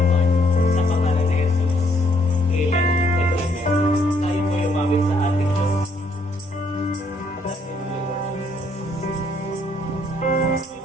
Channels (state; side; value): normal; both; correlation 0.69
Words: sa pangalan ni Jesus. Amen and amen. Tayo po umawit sa ating Diyos.